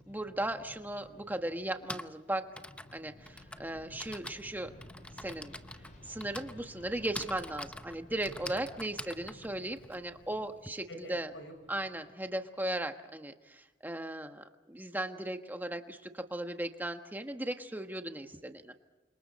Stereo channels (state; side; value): normal; both; correlation 0.67